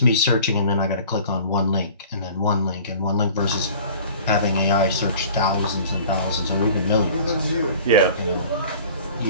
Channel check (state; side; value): inverted; both; correlation -0.46